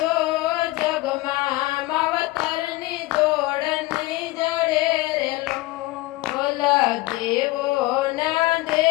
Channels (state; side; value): quieter; right; 19.6 dB